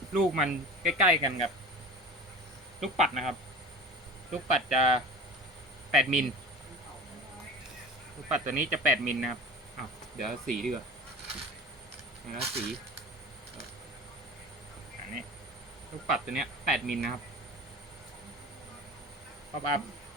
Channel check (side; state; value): both; normal; correlation 0.36